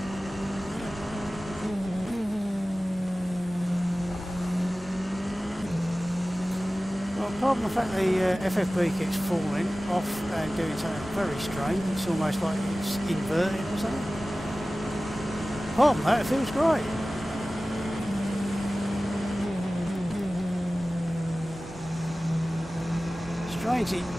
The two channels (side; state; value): both; normal; correlation 0.97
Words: apart from the fact the FFB keeps falling off and doing something very strange, it's almost like it's inverted or something. Apart from that, it feels great. Strange,